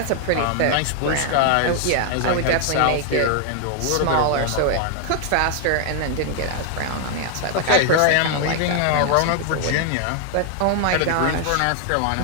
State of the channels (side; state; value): both; different; correlation 0.00